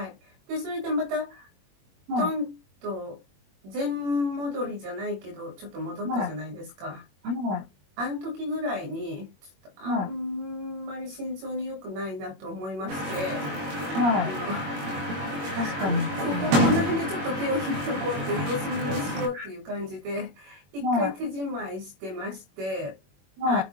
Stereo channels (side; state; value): left; late; 21 ms